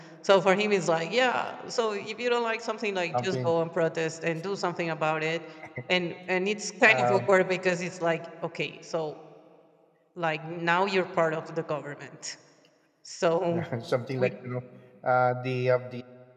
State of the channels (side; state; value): both; identical; correlation 1.00